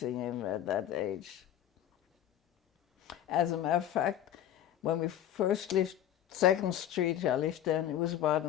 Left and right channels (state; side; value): quieter; right; 11.2 dB